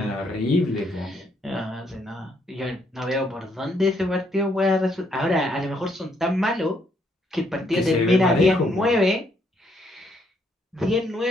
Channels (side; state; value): both; normal; correlation 0.72